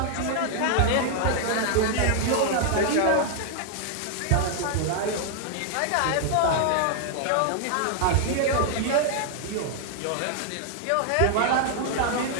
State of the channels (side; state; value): both; different; correlation 0.00